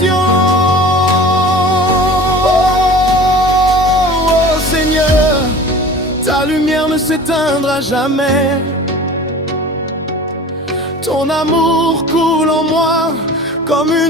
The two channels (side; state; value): both; normal; correlation 0.40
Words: Oh Seigneur, ta lumière ne s'éteindra jamais. Ton amour coule en moi comme